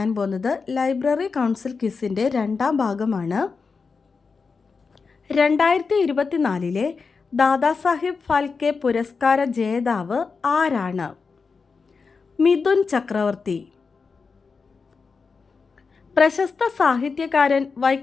പോകുന്നത് ലൈബ്രറി കൗൺസിൽ ക്വിസിൻ്റെ രണ്ടാം ഭാഗമാണ്. 2024 ദാദാസാഹിബ് ഫാൽക്കെ പുരസ്കാര ജേതാവ് ആരാണ്? മിഥുൻ ചക്രവർത്തി. പ്രശസ്ത സാഹിത്യകാരൻ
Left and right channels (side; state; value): right; quieter; 4.9 dB